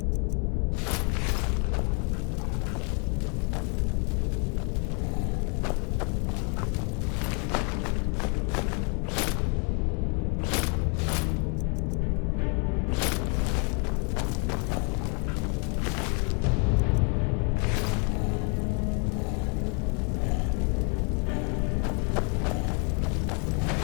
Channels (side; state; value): right; quieter; 37.1 dB